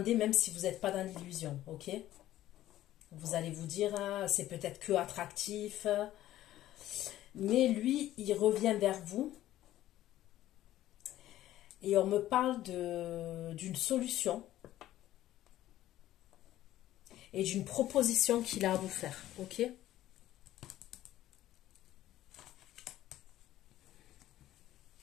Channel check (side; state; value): right; quieter; 13.9 dB